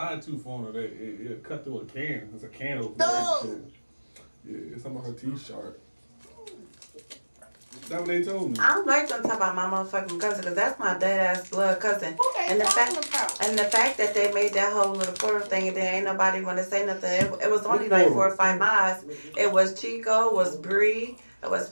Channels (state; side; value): inverted; both; correlation -1.00